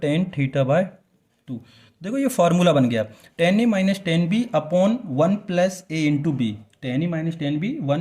थीटा बाई टू। देखो ये फार्मूला बन गया, tan A minus tan B upon 1 plus A into B. Tan A minus tan B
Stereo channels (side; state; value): both; identical; correlation 1.00